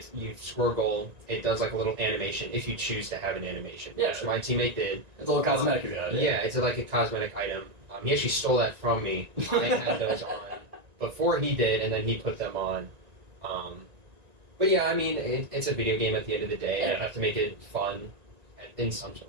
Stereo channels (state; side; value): late; left; 1.9 ms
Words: you score a goal, it does like a little animation if you choose to have an animation, which my teammate did. It's a little cosmetic. Yeah, it's like a cosmetic item. He actually stole that from me. I had those on before he did, and then he put them on. But yeah, I mean, it's a video game at the end of the day, and I have to make it fun in some